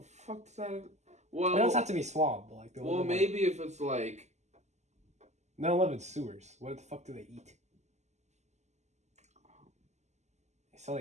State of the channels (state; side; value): late; left; 0.33 ms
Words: fuck does that? Well, it doesn't have to be swamp. But like, well, maybe if it's like. They don't live in sewers. What the fuck do they eat? They sell